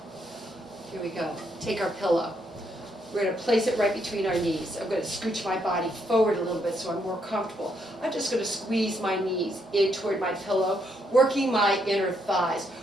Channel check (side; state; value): both; normal; correlation 0.75